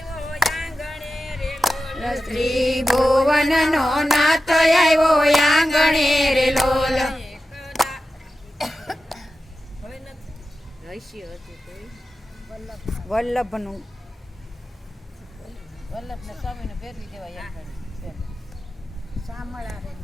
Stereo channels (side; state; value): both; normal; correlation 0.93